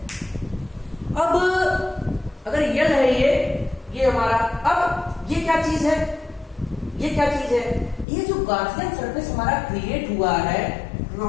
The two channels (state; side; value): drops out; right; at 8.1 s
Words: अब अगर L है ये हमारा, अब ये क्या चीज है? ये क्या चीज है? ये जो गार्सियन सरफेस हमारा क्रिएट हुआ है